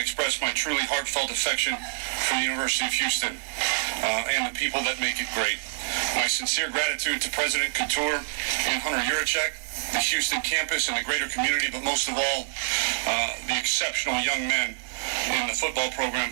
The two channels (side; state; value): left; silent; digital silence